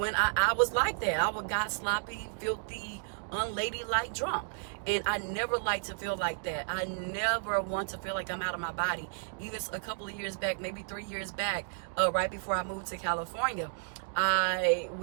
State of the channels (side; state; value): left; silent; digital silence